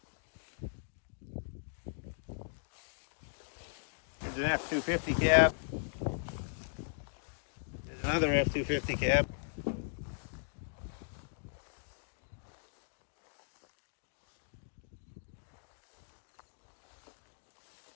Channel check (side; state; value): right; silent; digital silence